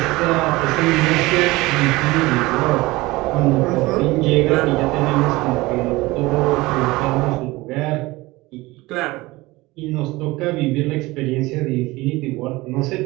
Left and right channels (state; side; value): quieter; left; 20.8 dB